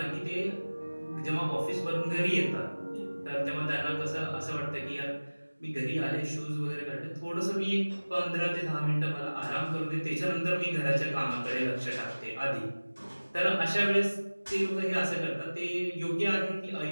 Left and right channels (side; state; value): both; inverted; correlation -1.00